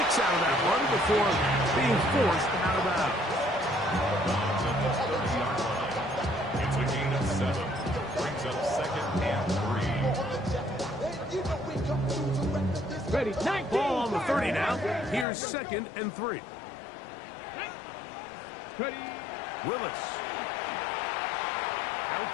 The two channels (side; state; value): right; drops out; at 15.2 s